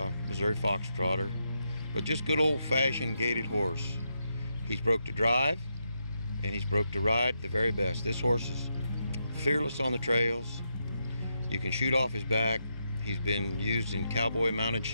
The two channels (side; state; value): both; inverted; correlation -0.83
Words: Missouri Foxtrotter, but just good old-fashioned gaited horse. He's broke to drive, and he's broke to ride the very best. This horse is fearless on the trails. You can shoot off his back. He's been used in cowboy mounted